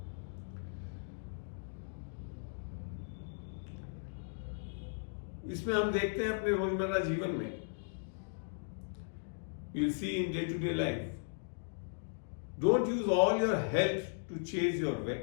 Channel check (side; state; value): right; silent; digital silence